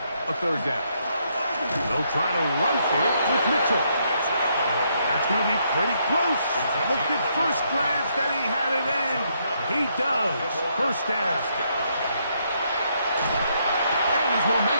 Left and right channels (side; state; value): both; inverted; correlation -0.74